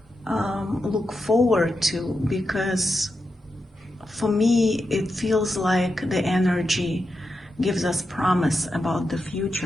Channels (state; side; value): normal; both; correlation 0.87